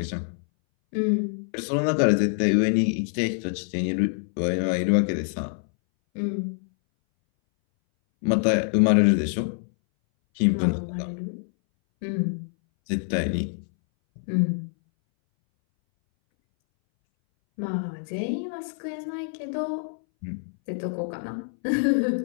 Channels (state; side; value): silent; right; 60 dB below the other